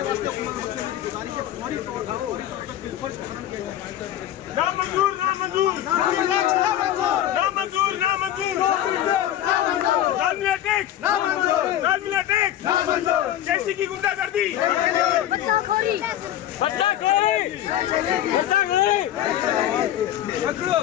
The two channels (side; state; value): right; quieter; 12.1 dB